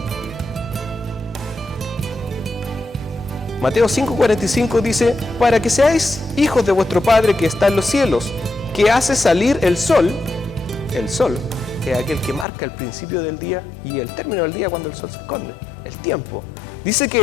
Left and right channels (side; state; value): right; drops out; at 12.5 s